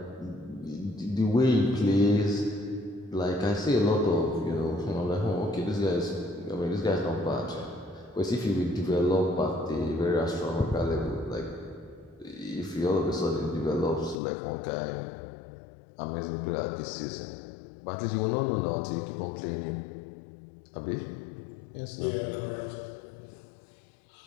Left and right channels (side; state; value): right; drops out; at 14.2 s